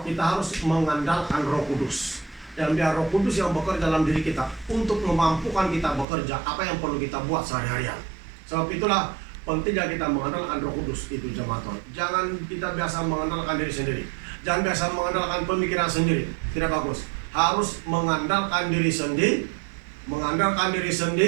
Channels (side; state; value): left; drops out; at 6.1 s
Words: kita harus mengandalkan Roh Kudus. Dan biar Roh Kudus yang bekerja dalam diri kita untuk memampukan kita bekerja apa yang perlu kita buat sehari-harian. Sebab itulah pentingnya kita mengandalkan Roh Kudus itu, jemaat Tuhan. Jangan kita biasa mengandalkan diri sendiri. Jangan biasa mengandalkan pemikiran sendiri. Tidak bagus. Harus mengandalkan diri sendiri, mengandalkan diri